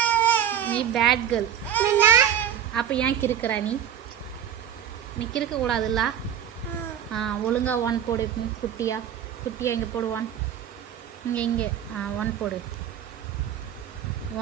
நீ பேட் கேர்ள். அப்போ ஏன் கிறுக்கிறா நீ? நீ கிறுக்க கூடாதுல்ல. ஒழுங்கா ஒன் போடு. குட்டியா குட்டியா. இங்கே போடு. ஒன். இங்கே ஒன் போடு.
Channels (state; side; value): quieter; left; 9.5 dB